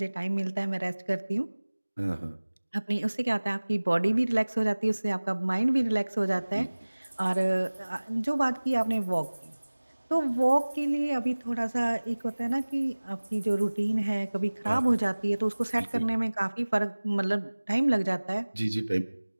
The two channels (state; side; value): inverted; both; correlation -1.00